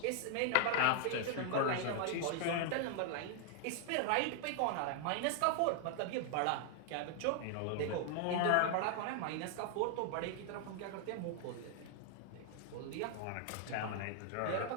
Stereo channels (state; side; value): different; both; correlation 0.00